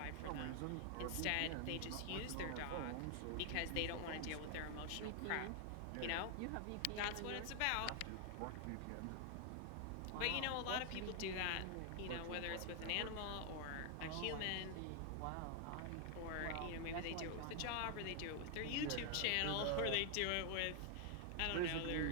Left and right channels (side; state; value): both; different; correlation 0.00